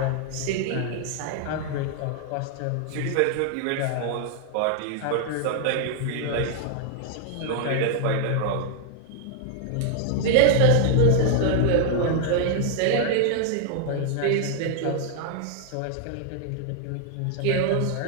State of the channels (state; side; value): different; both; correlation 0.00